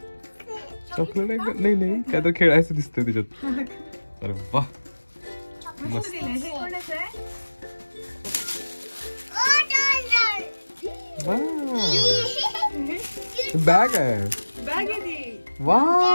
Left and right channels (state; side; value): inverted; both; correlation -1.00